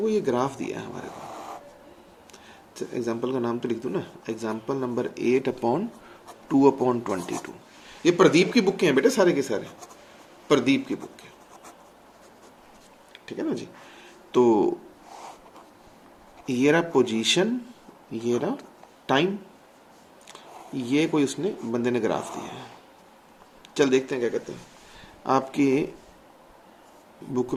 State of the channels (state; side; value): identical; both; correlation 1.00